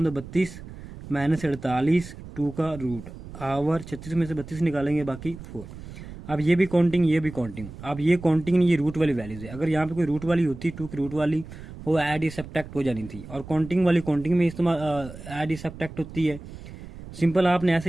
2 32 माइनस 48 2 का रूट आवर 36 में से 32 निकालेंगे बाकी 4। अब ये भी काउंटिंग ये भी काउंटिंग, अब ये काउंटिंग नहीं, ये रूट वाली वैल्यूज है। अगर यहाँ पे कोई रूट वाली होती 2 की रूट वाली, वो ऐड या सब्ट्रैक्ट हो जानी थी। और काउंटिंग वाली काउंटिंग में इस्तेमाल ऐड या सब्ट्रैक्ट होती है। सिंपल आपने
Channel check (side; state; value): right; noise; rumble, 14 dB below the sound